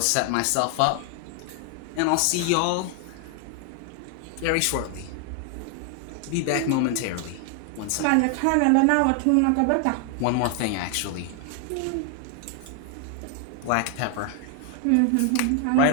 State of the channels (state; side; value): different; both; correlation 0.00